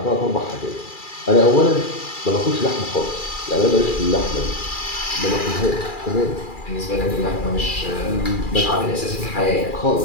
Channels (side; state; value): right; late; 2.4 ms